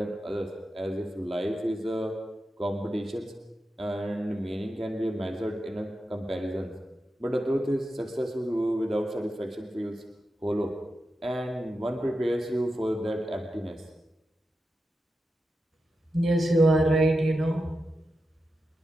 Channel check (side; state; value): both; normal; correlation 0.89